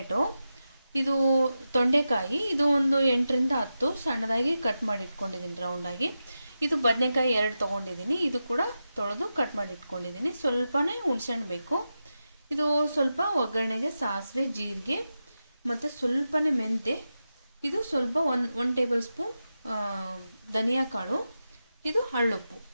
ಇದು ತೊಂಡೆಕಾಯಿ. ಇದು ಒಂದು 8ರಿಂದ 10 ಸಣ್ಣದಾಗಿ ಕಟ್ ಮಾಡಿ ಇಟ್ಕೊಂಡಿದ್ದೀನಿ ರೌಂಡಾಗಿ. ಇದು ಬದನೆಕಾಯಿ 2 ತೊಗೊಂಡಿದ್ದೀನಿ. ಇದು ಕೂಡ ತೊಳೆದು ಕಟ್ ಮಾಡಿ ಇಟ್ಕೊಂಡಿದ್ದೀನಿ. ಸ್ವಲ್ಪನೇ ಹುಣಸೆಹಣ್ಣು ಬೇಕು. ಇದು ಸ್ವಲ್ಪ ಒಗ್ಗರಣೆಗೆ ಸಾಸಿವೆ, ಜೀರಿಗೆ ಮತ್ತು ಸ್ವಲ್ಪನೇ ಮೆಂತೆ. ಇದು ಸ್ವಲ್ಪ ಒಂದು ಟೇಬಲ್ ಸ್ಪೂನ್ ಧನಿಯಾ ಕಾಳು. ಇದು ಹಳ್ಳುಪ್ಪು.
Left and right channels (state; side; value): inverted; both; correlation -0.91